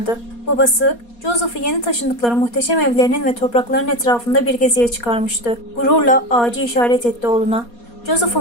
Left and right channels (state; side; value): late; right; 4.2 ms